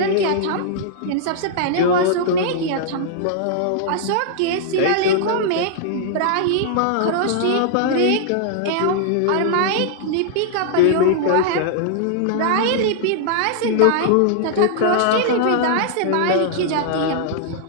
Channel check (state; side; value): different; both; correlation -0.01